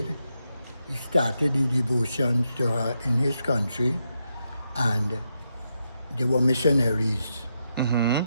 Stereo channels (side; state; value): both; inverted; correlation -0.84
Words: he started the devotions to her in his country, and they were missionaries.